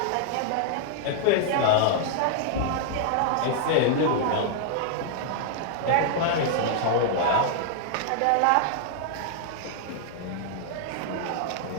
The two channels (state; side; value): different; both; correlation -0.01